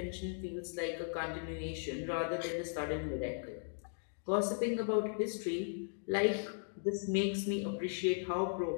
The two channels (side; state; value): right; silent; digital silence